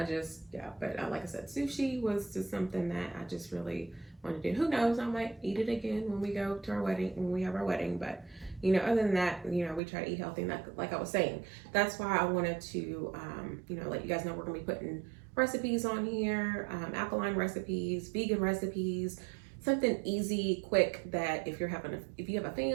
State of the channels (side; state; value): left; drops out; at 9.8 s